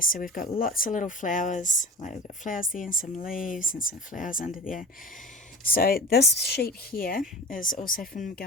So we've got lots of little flowers, like we've got flowers there and some leaves and some flowers under there. So this sheet here is also from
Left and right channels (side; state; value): both; normal; correlation 0.32